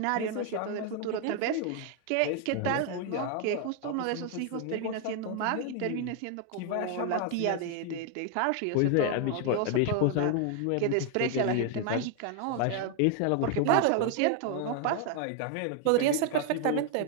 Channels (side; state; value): both; different; correlation 0.00